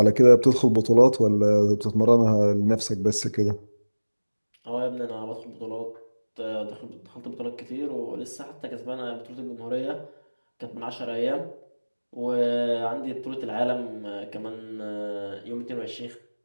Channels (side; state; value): both; inverted; correlation -1.00